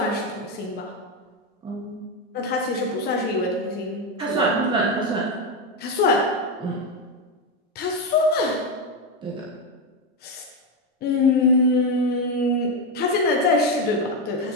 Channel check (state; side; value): normal; both; correlation 0.10